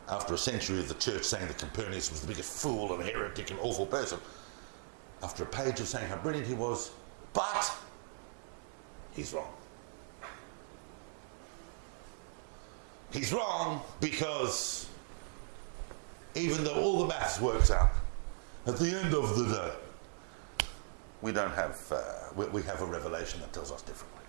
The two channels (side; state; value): left; silent; 52 dB below the other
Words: after a century of the church saying that Copernicus was the biggest fool and heretic and awful person, after a page of saying how brilliant he was, but he's wrong. He's wrong because even though all the maths works out, at the end of the day, we don't have, we have a revelation that tells us differently.